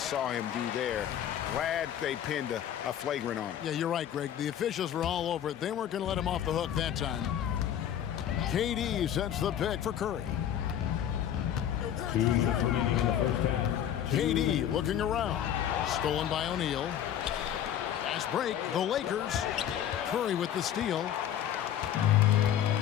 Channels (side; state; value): right; quieter; 10.3 dB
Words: saw him do there. Glad they pinned a flagrant on him. Yeah, you're right, Greg. The officials were all over it. They weren't going to let him off the hook that time. KD sets the pick for Curry. KD looking around. Stolen by O'Neal. Fast break. The Lakers. Curry with the steal.